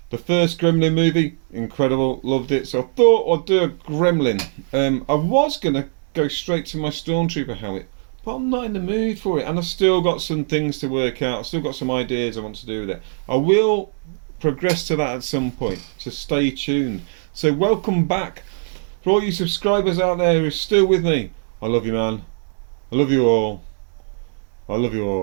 The first Gremlin movie, incredible, loved it. So I thought I'd do a gremlin. I was going to go straight to my Stormtrooper helmet, but I'm not in the mood for it, and I've still got some things to work out. I've still got some ideas I want to do with it. I will progress to that at some point, so stay tuned. So welcome back. For all you subscribers out there who are still with me, I love you, man. I love you all. I love you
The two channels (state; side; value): silent; left; digital silence